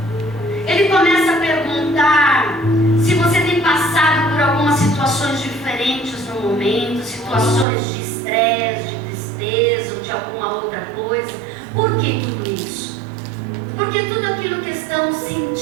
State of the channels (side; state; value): left; drops out; at 7.7 s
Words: Ele começa a perguntar se você tem passado por algumas situações diferentes no momento, situações de estresse, de tristeza ou de alguma outra coisa. Por que tudo isso? Porque tudo aquilo que estamos